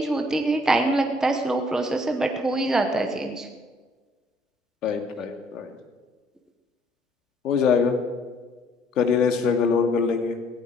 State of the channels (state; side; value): normal; both; correlation 0.63